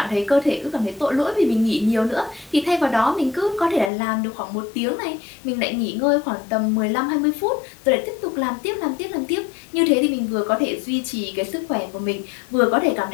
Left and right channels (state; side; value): drops out; right; at 3.9 s